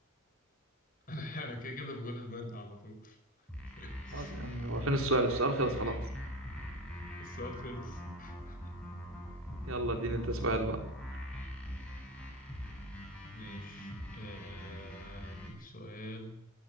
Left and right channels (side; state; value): both; normal; correlation 0.23